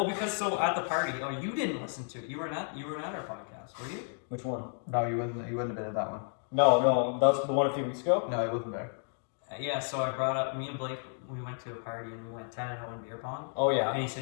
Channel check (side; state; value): right; silent; 56 dB below the other